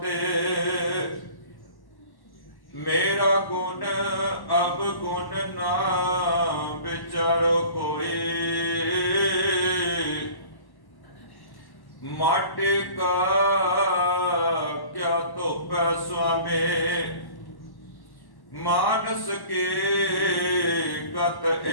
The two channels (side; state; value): right; late; 1.1 ms